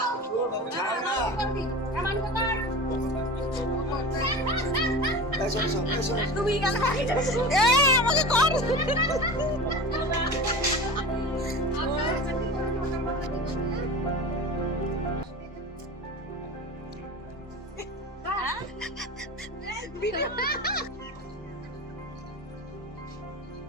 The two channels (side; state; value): both; normal; correlation 0.32